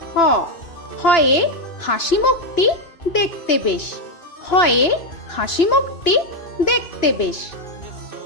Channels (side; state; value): right; late; 2.9 ms